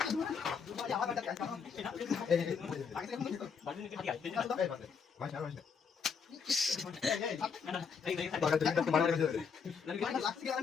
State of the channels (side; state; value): right; quieter; 6.1 dB